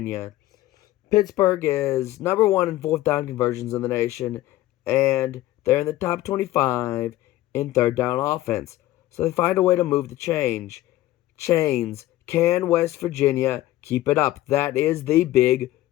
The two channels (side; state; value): right; quieter; 15.8 dB